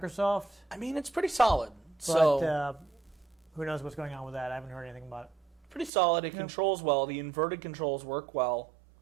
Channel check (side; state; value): left; drops out; at 5.9 s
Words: I mean, it's pretty solid. But So who knows what's going on with that? I haven't heard anything about it. pretty solid. It controls well. The inverted controls work well.